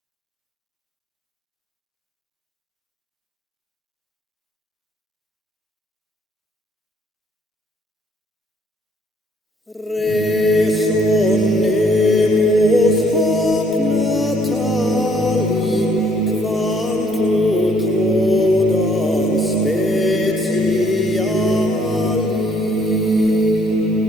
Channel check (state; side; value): normal; both; correlation 0.64